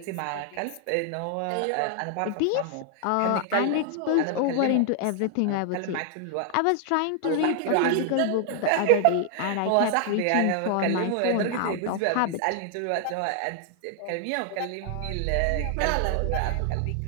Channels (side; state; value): both; different; correlation 0.00